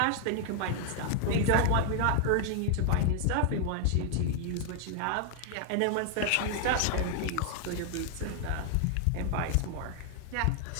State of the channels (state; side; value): different; both; correlation 0.00